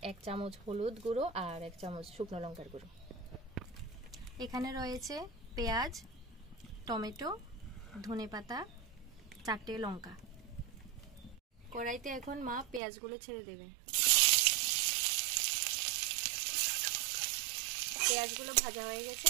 1 চামচ হলুদ গুঁড়ো আর 1 চামচ শুকনো লঙ্কার গুঁড়ো। এখানে রয়েছে পেঁয়াজ, টমেটো, ধনেপাতা, 4টে লঙ্কা। কড়াইতে এখন মা পেঁয়াজগুলো ছেড়ে দেবে। পেঁয়াজগুলো ভাজা হয়ে গেছে,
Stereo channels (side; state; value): left; drops out; at 12.8 s